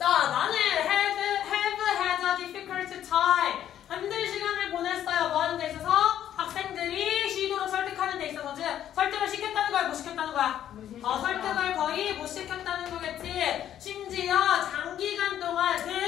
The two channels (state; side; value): quieter; right; 10.9 dB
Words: 나는 have had a difficult time. 힘든 시간을 보냈어요. 뭐 하는 데 있어서? 학생들이 쉬도록 설득하는 데 있어서 설득을 시켰다는 거야? 못 시켰다는 거야? 설득을 거의 못 시켰다는 거겠지. 심지어 장기간 동안